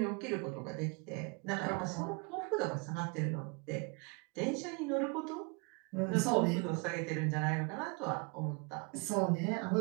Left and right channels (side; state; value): left; quieter; 31.8 dB